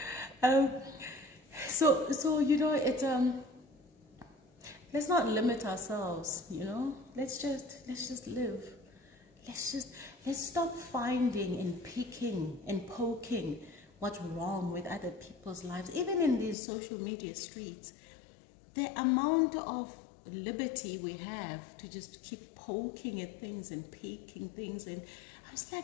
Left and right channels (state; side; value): drops out; right; at 16.6 s